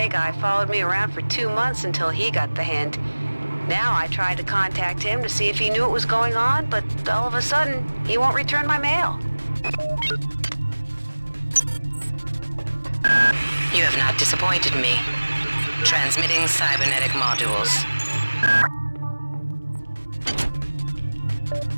guy followed me around for 2 months until he got the hint. Now I tried to contact him to see if he knew what was going on, but all of a sudden, he won't return my mail. You have not disappointed me. Transmitting cybernetic modules.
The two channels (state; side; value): inverted; both; correlation -1.00